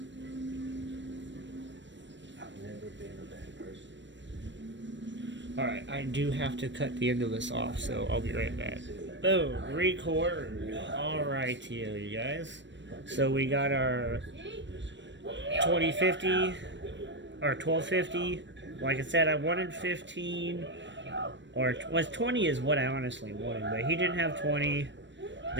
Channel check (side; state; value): left; late; 0.53 ms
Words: Alright, I do have to cut the end of this off, so I'll be right back. Boom, record. Alright, you guys. So we got our 2050 or 1250. Like I said, I wanted 15, or 20 is what I honestly wanted, but he didn't have 20.